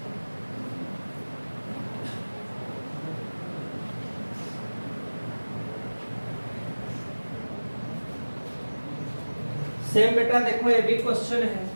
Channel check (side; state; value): both; inverted; correlation -1.00